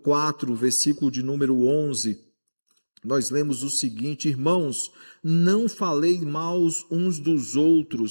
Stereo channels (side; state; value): both; inverted; correlation -1.00